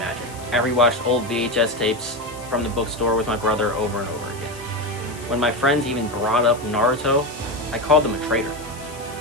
I rewatched old VHS tapes from the bookstore with my brother over and over again. When my friends even brought up Naruto, I called them a traitor.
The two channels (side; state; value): left; noise; hiss, 18 dB below the sound